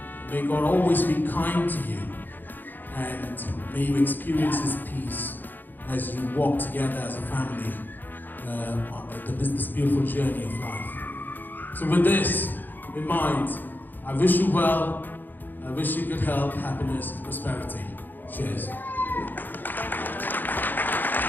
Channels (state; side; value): late; right; 0.089 ms